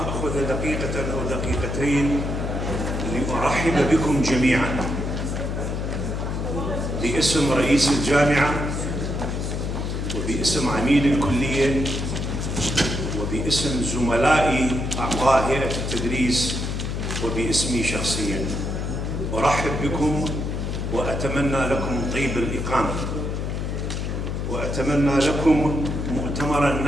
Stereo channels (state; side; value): noise; left; hum, 2 dB below the sound